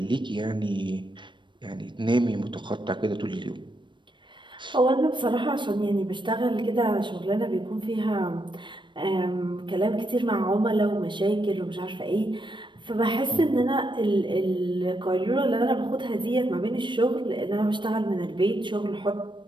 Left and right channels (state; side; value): late; left; 0.23 ms